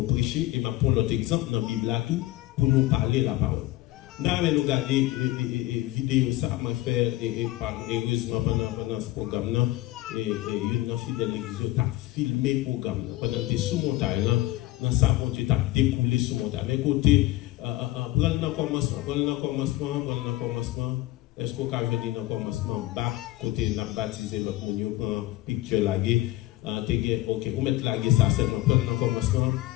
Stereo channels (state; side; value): quieter; right; 16.7 dB